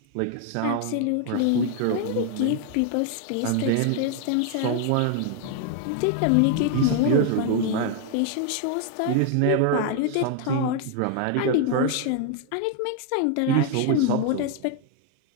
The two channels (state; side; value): different; both; correlation 0.00